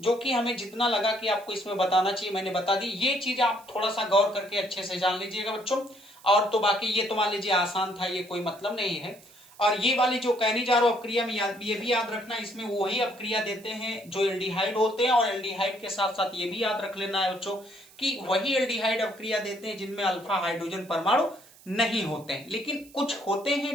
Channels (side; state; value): right; noise; hiss, 24 dB below the sound